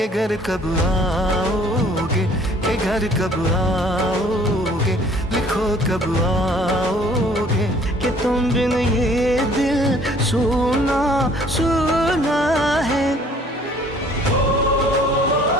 घर कब आओगे, कि घर कब आओगे, लिखो कब आओगे, कि तुम बिन ये दिल सुना सुना है।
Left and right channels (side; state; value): both; normal; correlation 0.56